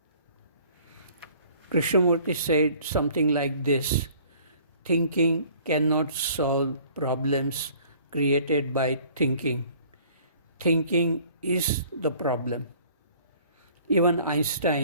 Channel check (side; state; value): both; inverted; correlation -0.54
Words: Krishnamurti said something like this: thinking cannot solve problems created by thinking. Thinking is the problem. Even